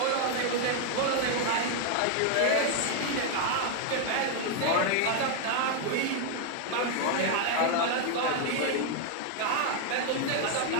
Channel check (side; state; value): both; different; correlation 0.01